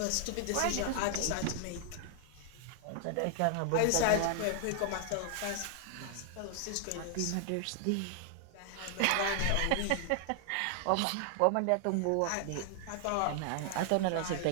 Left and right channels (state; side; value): different; both; correlation 0.00